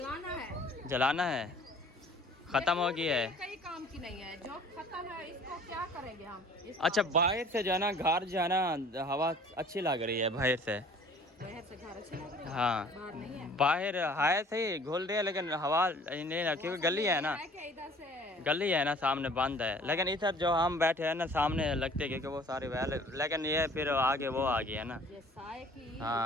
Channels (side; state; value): both; normal; correlation 0.51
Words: जलाना है, ख़त्म हो गई है। कई काम की नहीं है, जो खत्म है इसको क्या करेंगे हम? अच्छा बाहर से जो है ना घर जो है ना हवा अच्छी लग रही है बाहर से। बाहर से घर अच्छे लग रहे हैं। हाँ बाहर नहीं है। बाहर है सही घुल रही है, लेकिन हवा नहीं है, क्योंकि गली है ना, इधर से गली है ना सामने बंद है। लेकिन इधर जो हम बैठे हैं ना सामने लगते हैं, क्योंकि वो सारे वैल, लेकिन ये फिर आगे वो आ गई है ना। ये साए की